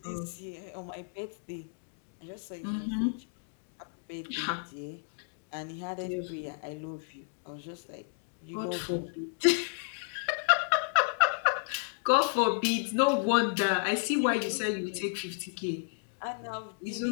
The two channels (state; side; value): silent; right; digital silence